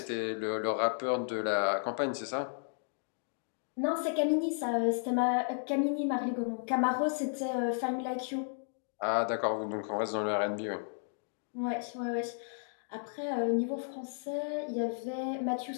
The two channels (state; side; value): silent; right; digital silence